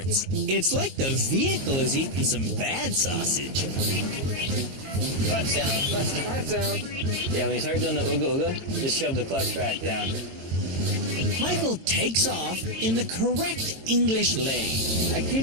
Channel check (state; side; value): late; left; 22 ms